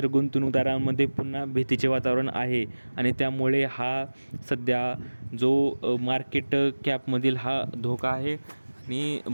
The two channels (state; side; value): inverted; both; correlation -1.00